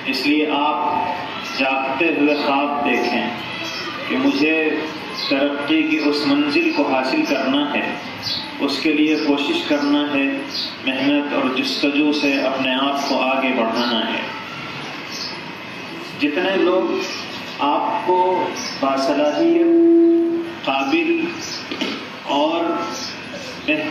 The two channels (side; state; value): both; identical; correlation 1.00